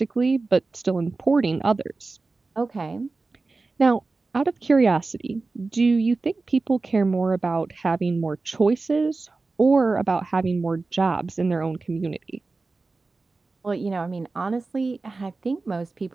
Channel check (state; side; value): quieter; left; 3.7 dB